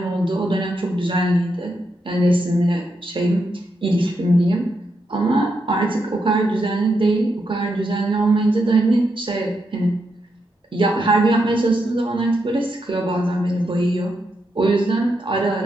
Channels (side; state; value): both; normal; correlation 0.82